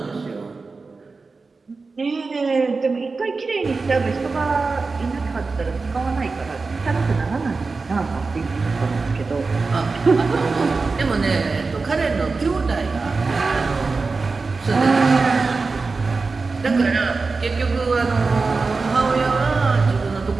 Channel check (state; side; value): quieter; left; 4.1 dB